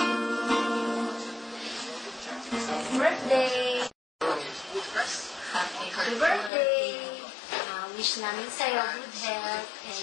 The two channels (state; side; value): drops out; right; at 6.5 s